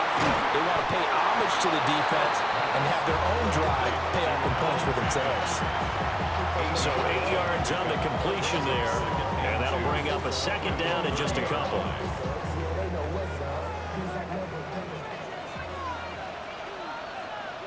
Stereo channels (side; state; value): both; identical; correlation 1.00